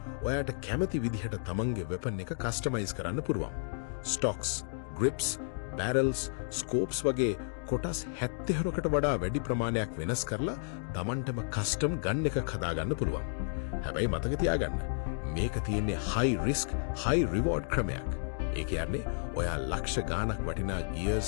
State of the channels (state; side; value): silent; right; digital silence